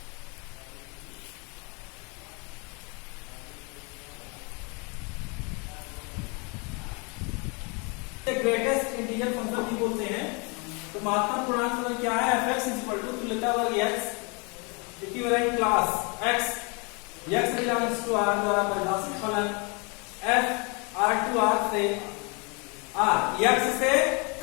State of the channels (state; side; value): quieter; right; 32.5 dB